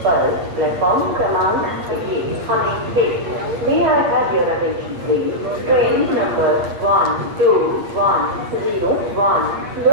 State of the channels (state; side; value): late; left; 8.5 ms